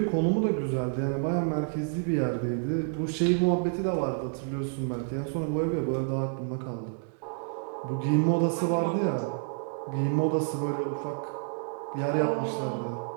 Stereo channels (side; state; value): left; silent; digital silence